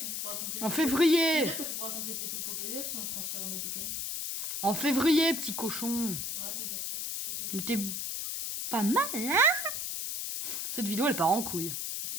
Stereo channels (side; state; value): left; noise; hiss, 3 dB below the sound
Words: pourras compléter. En C'est-à-dire février. que tu pourras compléter tout le Pokédex en transférant des Pokémon. En février, petit cochon. Arrête de dire ça, c'est très Mais vrai. t'es pas mal, hein? Cette vidéo, elle part en couille.